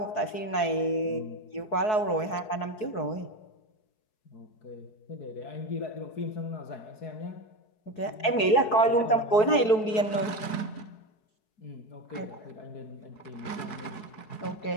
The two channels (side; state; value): right; late; 4.7 ms